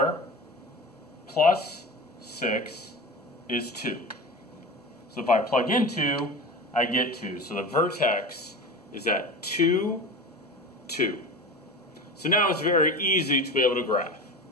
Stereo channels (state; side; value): normal; both; correlation 0.30